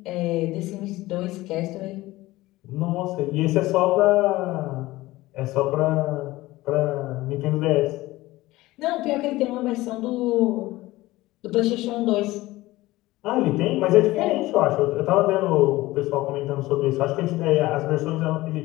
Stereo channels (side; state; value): right; quieter; 18.4 dB